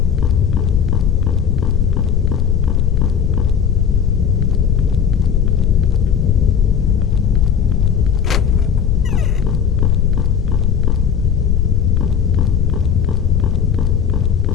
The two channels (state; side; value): quieter; right; 7.7 dB